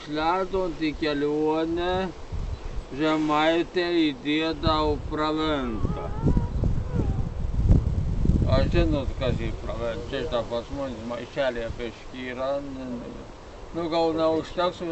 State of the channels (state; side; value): identical; both; correlation 1.00